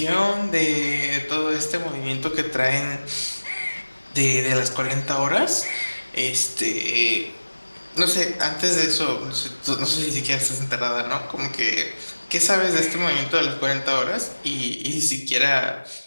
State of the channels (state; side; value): inverted; both; correlation -1.00